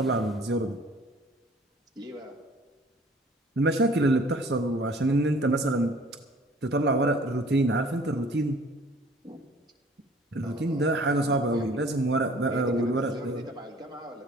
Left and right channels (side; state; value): both; normal; correlation 0.52